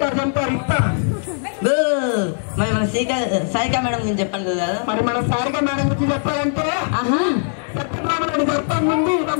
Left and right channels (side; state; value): right; silent; digital silence